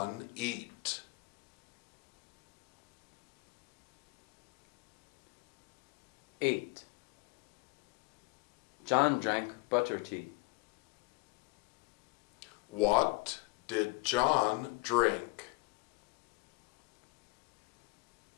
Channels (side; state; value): right; quieter; 26.0 dB